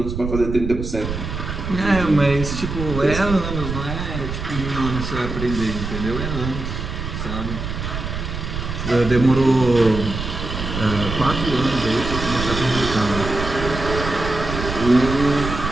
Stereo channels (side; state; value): right; noise; rumble, 5 dB below the sound